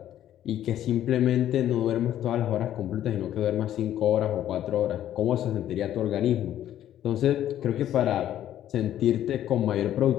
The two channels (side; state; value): right; quieter; 11.7 dB